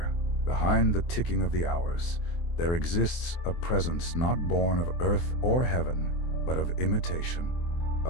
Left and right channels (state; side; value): late; right; 24 ms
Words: behind the ticking of the hours, there exists a presence not born of earth or heaven, but of imitation.